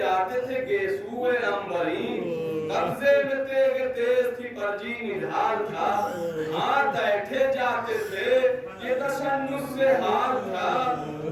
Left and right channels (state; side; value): identical; both; correlation 1.00